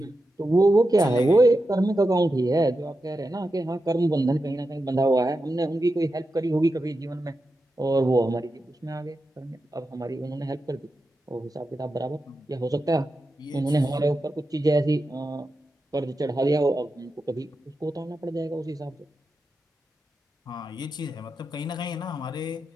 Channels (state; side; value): normal; both; correlation 0.89